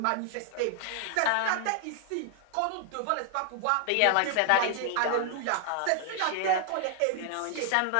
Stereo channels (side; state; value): both; different; correlation 0.00